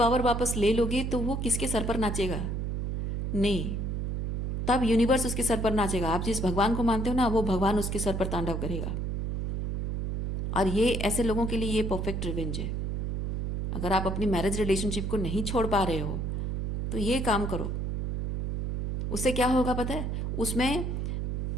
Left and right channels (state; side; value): noise; right; hum, 2 dB below the sound